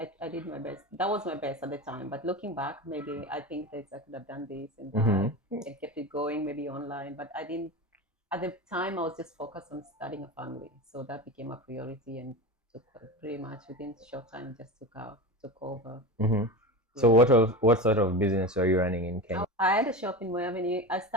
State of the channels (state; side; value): normal; both; correlation 0.25